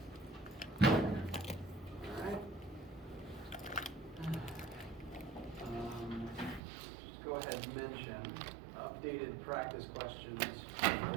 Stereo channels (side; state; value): left; drops out; at 6.6 s